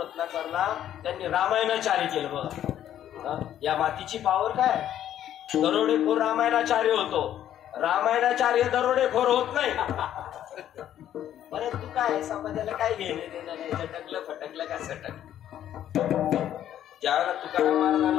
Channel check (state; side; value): quieter; right; 11.1 dB